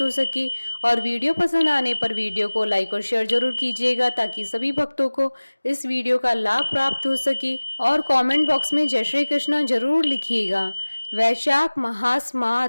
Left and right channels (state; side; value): inverted; both; correlation -1.00